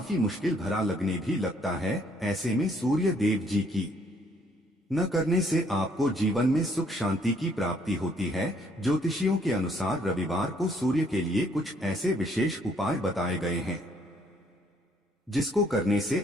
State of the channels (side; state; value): both; normal; correlation 0.66